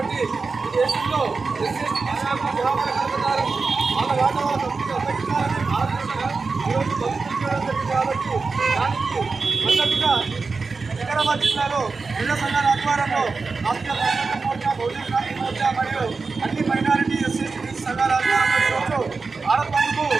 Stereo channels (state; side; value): quieter; left; 4.4 dB